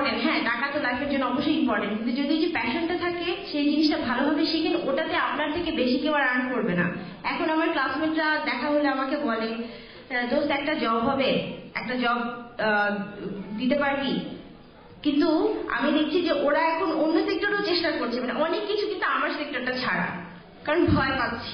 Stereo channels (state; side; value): identical; both; correlation 1.00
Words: হ্যাঁ, টাকা তো লাইফের জন্য অবশ্যই ইম্পর্টেন্ট, কিন্তু যদি যে প্যাশনটা থাকে সেই জিনিসটা ভালোভাবে শিখেন, ওটাতে আপনার থেকে বেশি কেউ আর আর্ন করবে না। এখন আমার ক্লাসমেটরা দেখা হলে আমাকে বলে, দোস্ত একটা জব হবে, একটা জব দিতে পারবি? কিন্তু আমি দেখছি যে ওরা এখন অন্য সেক্টরেও চেষ্টা করছে, মানে অনেক কিছু, কিন্তু আমার সেক্টরটা ছাড়া, কারণ ভয়